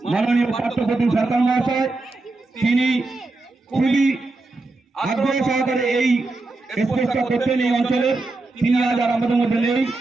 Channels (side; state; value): left; quieter; 3.2 dB